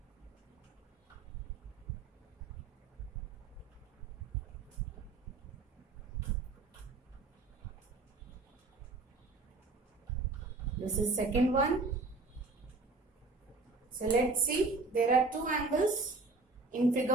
This is second one. So let's see, there are two angles in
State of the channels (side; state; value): left; quieter; 3.7 dB